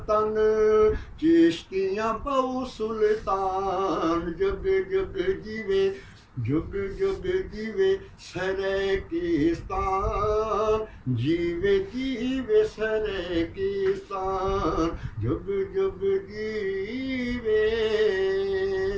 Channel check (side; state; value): both; identical; correlation 1.00